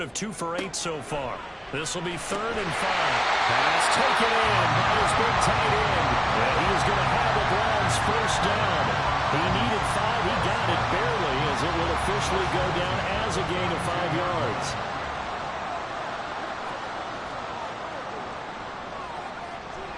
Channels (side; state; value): both; identical; correlation 1.00